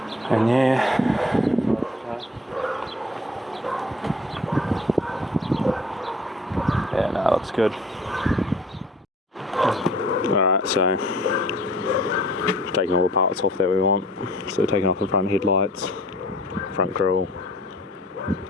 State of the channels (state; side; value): normal; both; correlation 0.51